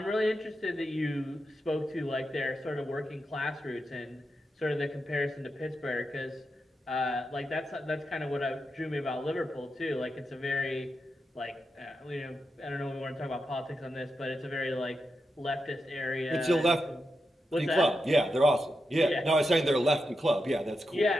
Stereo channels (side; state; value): both; normal; correlation 0.87